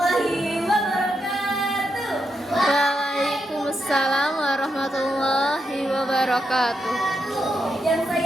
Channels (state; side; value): normal; both; correlation 0.83